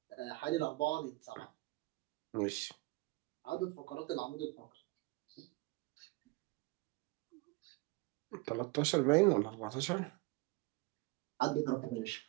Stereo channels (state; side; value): quieter; left; 22.9 dB